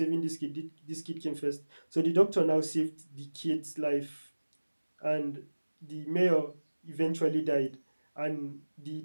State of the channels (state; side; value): inverted; both; correlation -1.00